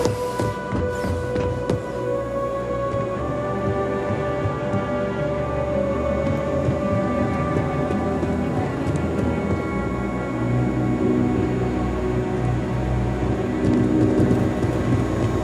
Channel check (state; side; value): identical; both; correlation 1.00